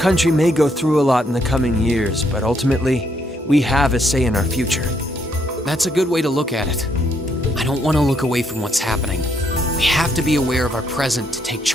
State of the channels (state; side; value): normal; both; correlation 0.73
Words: may go through a lot in the coming years, but ultimately, we have a say in our future. That's a good way to look at it. I don't want to look away from what's happening. We have to be aware of our present to take